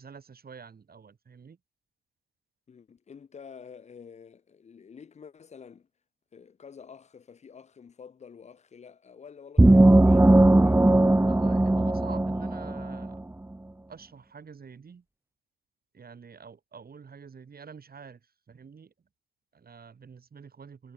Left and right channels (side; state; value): both; normal; correlation 0.98